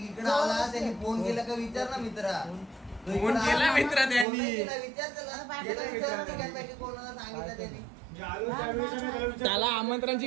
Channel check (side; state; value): left; drops out; at 4.2 s